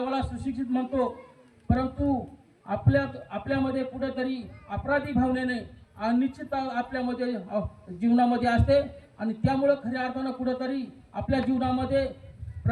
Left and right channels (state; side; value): identical; both; correlation 1.00